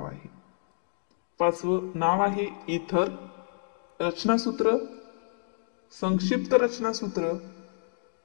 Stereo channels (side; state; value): right; silent; 58 dB below the other